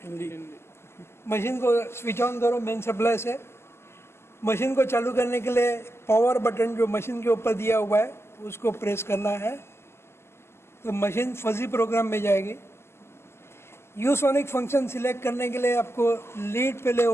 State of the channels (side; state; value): right; late; 0.12 ms